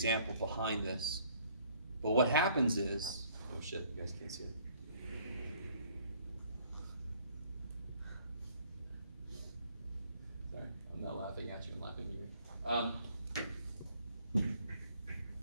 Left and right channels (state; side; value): inverted; both; correlation -0.61